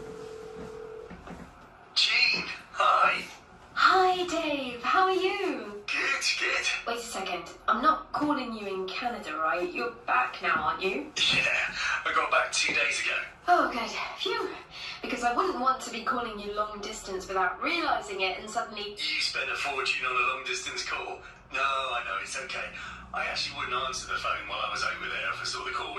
Jean, hi. Hi Dave, how are you? Good. Wait a second, I'm not calling you in Canada, right? You're back now, aren't you? Yeah, I got back 2 days ago. Oh good, phew. because I wouldn't want to be calling you long distance without realising it and suddenly. You spent a fortune on a long distance call. No, I know, it's okay. I actually wouldn't answer the phone while I was over there if I saw the call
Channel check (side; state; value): both; identical; correlation 1.00